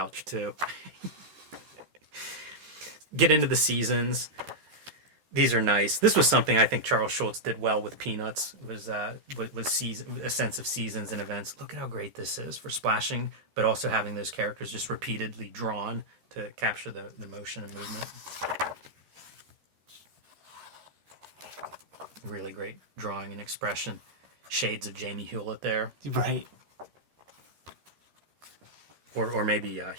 too. Get into the seasons. These are nice. This was something I think Charles Schultz did well with Peanuts. Was season, a sense of seasons and events. Look at how great this is for splashing, but also having those characters just repeatedly drawn to capture the motion and movement. Really great drawing and expression. Shades of Jamie Hewlett there. Right. Or maybe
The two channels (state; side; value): late; left; 13 ms